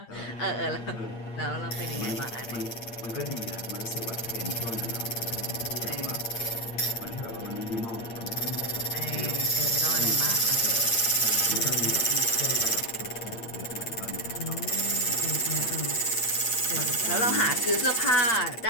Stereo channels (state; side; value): late; right; 8.7 ms